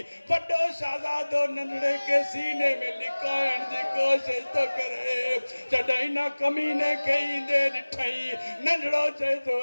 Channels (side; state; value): both; inverted; correlation -1.00